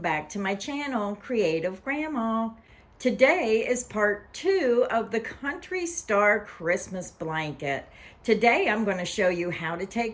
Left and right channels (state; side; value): identical; both; correlation 1.00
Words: to my channel, Creative Grandma. Today is part 2 of the Country Star Christmas blanket. Today I'm going to show you how to